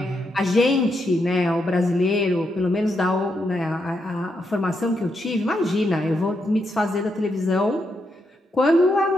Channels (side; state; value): both; normal; correlation 0.81